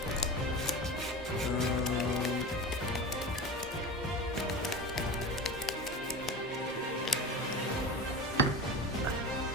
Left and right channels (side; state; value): both; normal; correlation 0.29